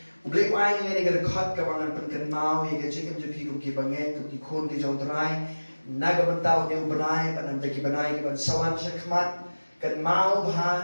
Boleh wai ni ke dekat ke bangan pen mau ya ke jikim je pi ke banget ke khon ke jong drai. Naga bentau dia benai ban ke benai ke ban sawan syakmat kan mau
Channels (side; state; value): both; inverted; correlation -1.00